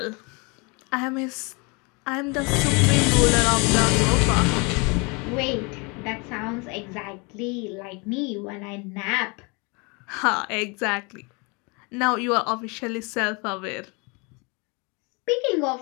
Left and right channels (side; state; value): right; quieter; 30.0 dB